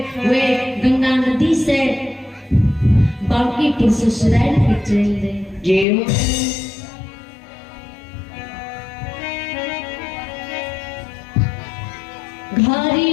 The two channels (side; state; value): right; drops out; at 5.9 s